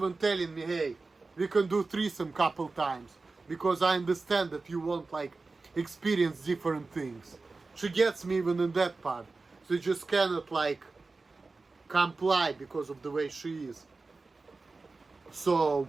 telling me, hey, we can do threesome couple times. Because I understand that you want like experience different things. She gets me even in that part. So you just cannot like comply because of the way she is. So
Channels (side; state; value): left; quieter; 3.8 dB